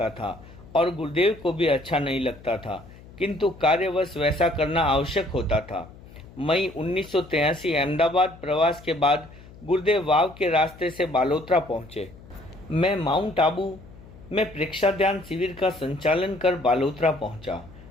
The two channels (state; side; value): noise; left; hum, 20 dB below the sound